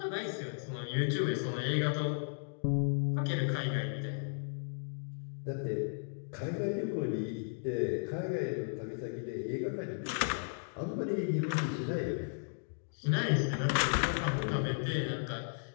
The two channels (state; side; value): silent; right; digital silence